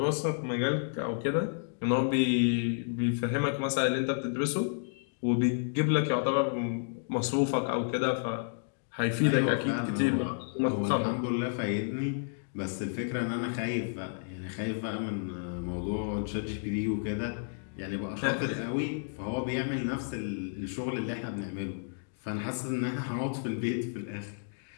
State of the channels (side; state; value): right; silent; digital silence